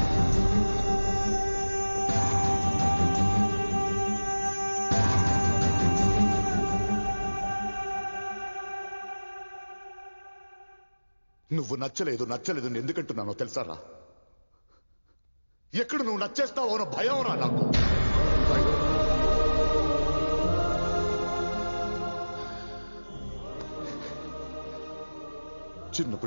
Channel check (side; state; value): both; inverted; correlation -1.00